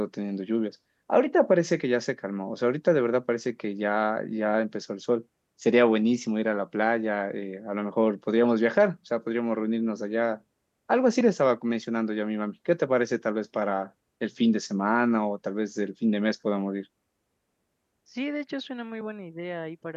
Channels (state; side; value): identical; both; correlation 1.00